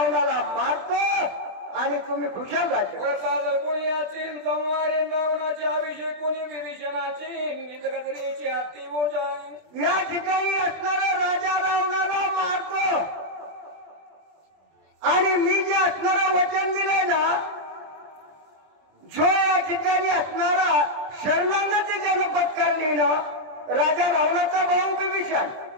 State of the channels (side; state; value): left; late; 20 ms